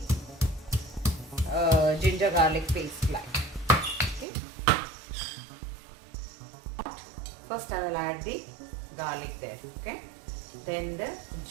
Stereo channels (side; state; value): left; drops out; at 4.2 s